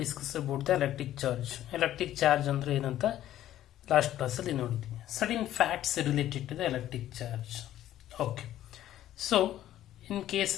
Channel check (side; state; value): right; quieter; 12.8 dB